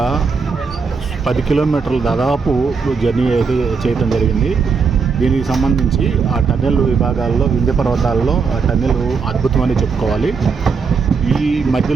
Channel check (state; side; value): quieter; left; 5.2 dB